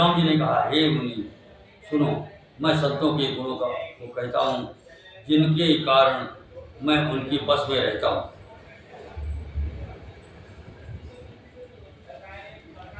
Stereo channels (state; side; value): identical; both; correlation 1.00